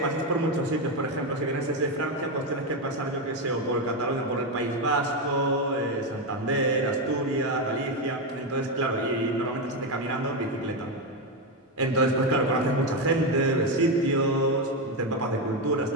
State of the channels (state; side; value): normal; both; correlation 0.09